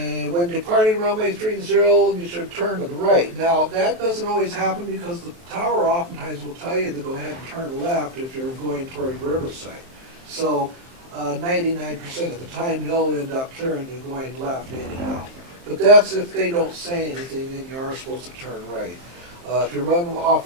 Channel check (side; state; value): left; late; 23 ms